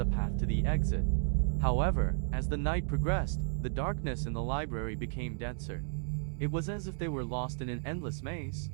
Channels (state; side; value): silent; left; digital silence